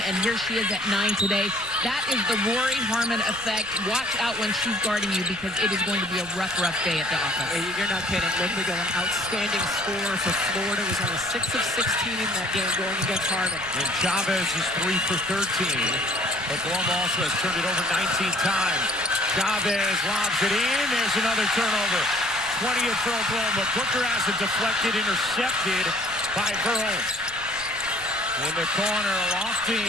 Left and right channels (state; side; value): noise; right; rumble, 19 dB below the sound